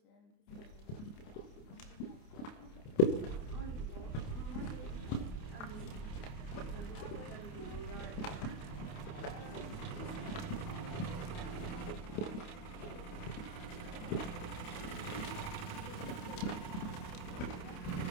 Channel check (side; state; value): right; late; 28 ms